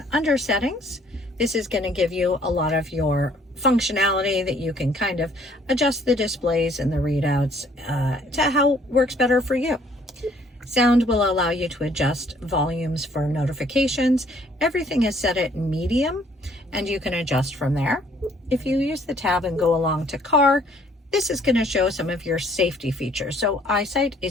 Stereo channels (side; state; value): both; normal; correlation 0.61